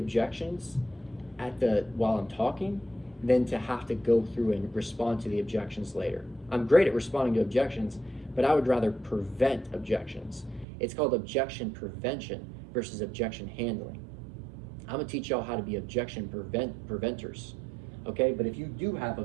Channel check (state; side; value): drops out; left; at 10.7 s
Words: while I'm talking than to have to go through and respond to the objections later. I'm great at responding to objections, but I would rather prevent objections. It's called objection prevention versus objection handling. I'm gonna teach y'all how to be objection preventers, okay? But if you do have